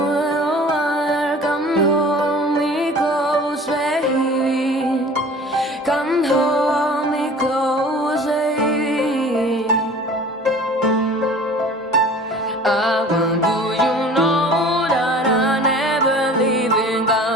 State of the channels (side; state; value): both; normal; correlation 0.45